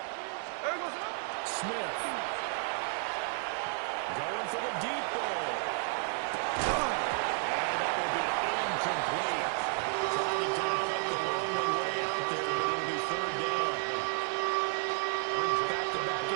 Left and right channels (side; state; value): left; silent; 56 dB below the other